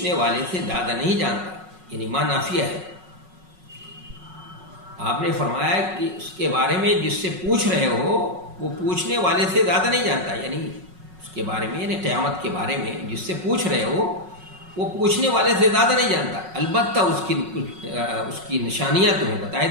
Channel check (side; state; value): left; late; 5.4 ms